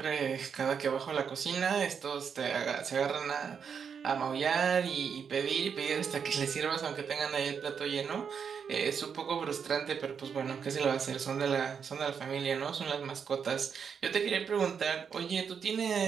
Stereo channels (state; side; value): quieter; left; 6.8 dB